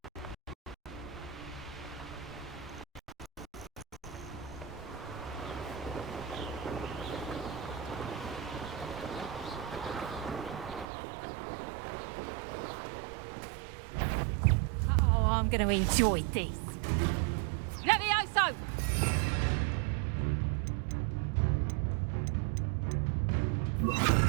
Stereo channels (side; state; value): left; drops out; at 10.9 s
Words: Oh, I'm going to enjoy this. Levioso!